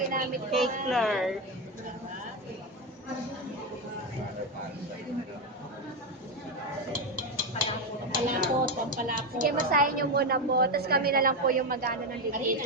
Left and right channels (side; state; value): both; normal; correlation 0.11